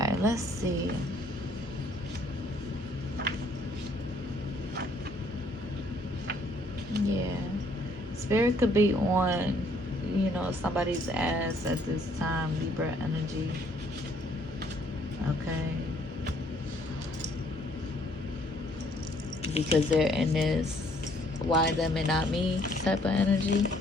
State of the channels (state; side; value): normal; both; correlation 0.64